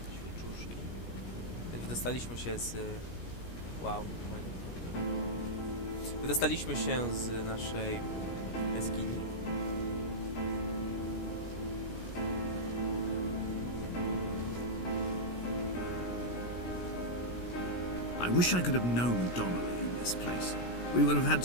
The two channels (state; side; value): late; right; 17 ms